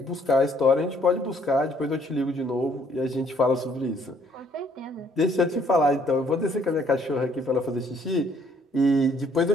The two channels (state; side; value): normal; both; correlation 0.64